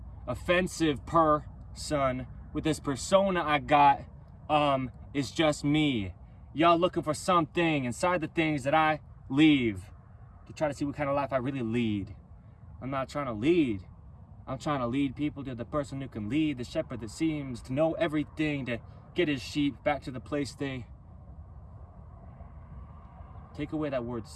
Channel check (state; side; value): identical; both; correlation 1.00